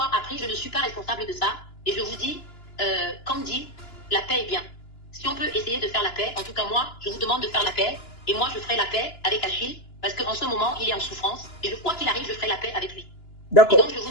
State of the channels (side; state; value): right; late; 2.9 ms